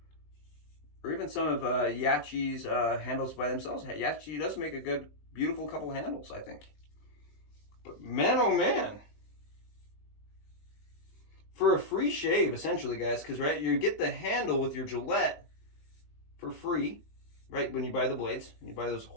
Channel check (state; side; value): late; right; 20 ms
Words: or even some of YAQI's handles by themselves. YAQI does make a good, beautiful couple handles, I think. But man, oh man. For a free shave, essentially, guys, because, right, you get the handle with your Gillette for free, right, when you buy the blades. You buy those